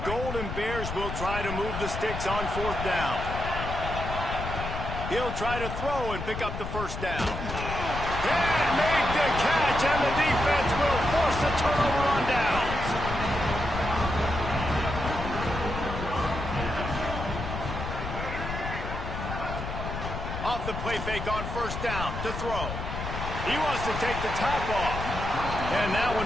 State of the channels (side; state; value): left; noise; rumble, 6 dB below the sound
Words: Golden Bears will try to move the sticks on 4th down. He'll try to throw and pick up the first down. And made the catch, and the defense will force a turnover on downs. Off the play fake on first down to throw. He wants to take the top off. And that one